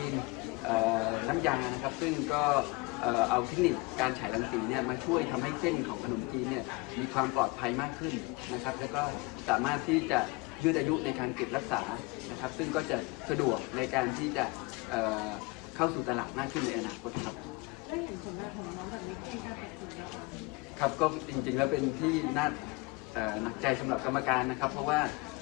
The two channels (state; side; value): quieter; right; 25.3 dB